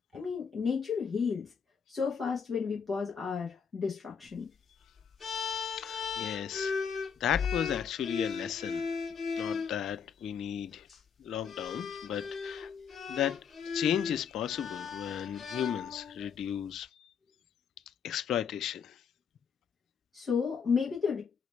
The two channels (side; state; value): right; quieter; 6.9 dB